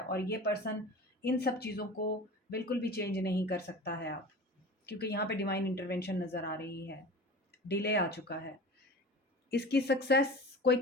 ये पर्सन इन सब चीज़ों को बिल्कुल भी चेंज नहीं कर सकता है आप, क्योंकि यहाँ पे डिवाइन इंटरवेंशन नज़र आ रही है। डिले आ चुका है। इसकी सक्सेस, कोई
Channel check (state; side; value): normal; both; correlation 0.36